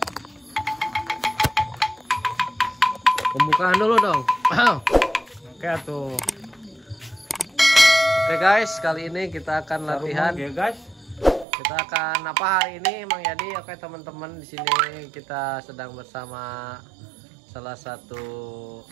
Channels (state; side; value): drops out; left; at 11.5 s